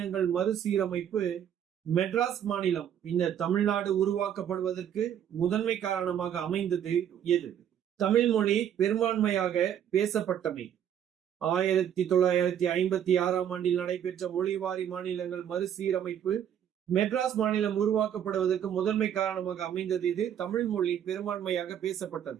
மறுசீரமைப்பு மெட்ராஸ் மாநிலம் பின்னர் தமிழ்நாடு உருவாக்கப்படுவதற்கு முதன்மை காரணமாக அமைந்தது எது? தமிழ் மொழி பெரும்பான்மையாக பேசப்பட்டமை. 1956ஆம் ஆண்டில் நடைபெற்ற மொழிவாரி மாநிலங்கள் மறுசீரமைப்பு மெட்ராஸ் மாநிலம் உருவாக்கப்படுவதற்கு முதன்மை காரணமாக அமைந்தது இது. தமிழ் மொழி பெரும்பான்மையாக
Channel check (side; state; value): left; quieter; 9.6 dB